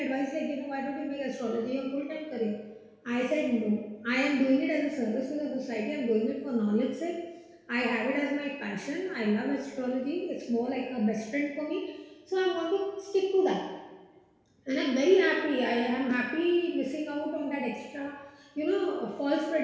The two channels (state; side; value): identical; both; correlation 1.00